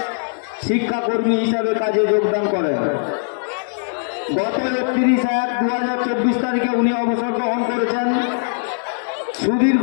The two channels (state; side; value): silent; right; digital silence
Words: শিক্ষাকর্মী হিসাবে কাজে যোগদান করেন। গত 31/1/2024 তারিখে উনি অবসর গ্রহণ করেছেন। সুদীর্ঘ